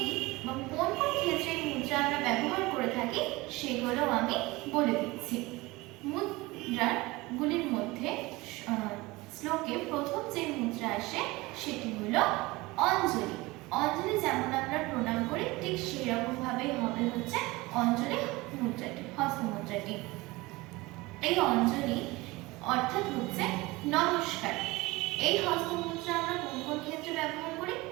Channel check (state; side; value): quieter; left; 21.7 dB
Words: এবং কোন কোন ক্ষেত্রে এই মুদ্রা আমরা ব্যবহার করে থাকি সেগুলো আমি বলে দিচ্ছি। মুদ্রাগুলির মধ্যে শ্লোকে প্রথম যে মুদ্রা আসে সেটি হলো অঞ্জলি। অঞ্জলি যেমন আমরা প্রণাম করি, ঠিক সেরকম ভাবেই হবে হচ্ছে অঞ্জলি মুদ্রাটি, হস্তমুদ্রাটি। এই অঞ্জলি অর্থাৎ হচ্ছে নমস্কার। এই হস্তমুদ্রা আমরা কোন কোন ক্ষেত্রে ব্যবহার করি?